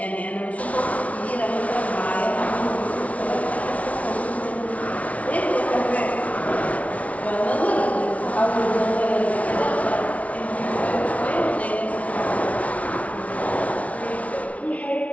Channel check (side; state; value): right; late; 0.067 ms